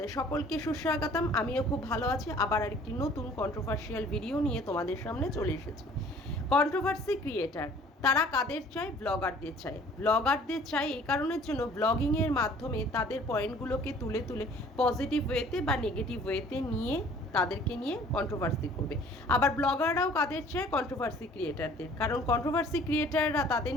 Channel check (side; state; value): both; normal; correlation 0.52